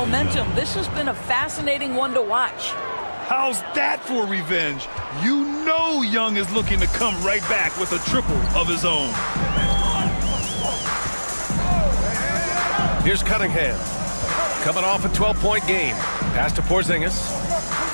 This has been a fascinating one to watch. How's that for revenge? You know Young is looking to come right back with a triple of his own. Here's Cunningham, coming off a 12-point game. Pass to Porzingis.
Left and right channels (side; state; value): both; inverted; correlation -1.00